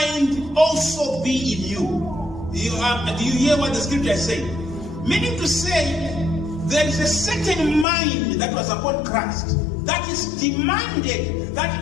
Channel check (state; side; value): drops out; right; at 7.9 s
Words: also be in you. Do you hear what the scripture is saying? Meaning to say, there is a certain mind that was upon Christ that is demanded